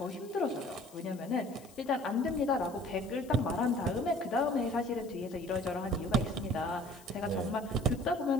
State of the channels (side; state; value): left; noise; hiss, 23 dB below the sound